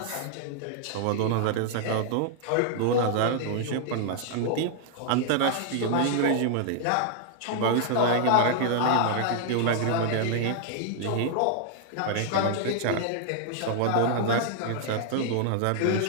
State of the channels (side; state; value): both; different; correlation 0.00